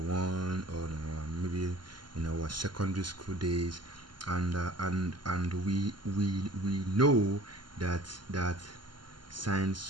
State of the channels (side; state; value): left; late; 0.71 ms